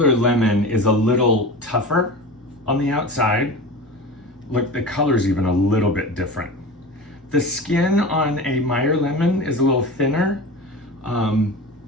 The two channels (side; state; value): both; normal; correlation 0.32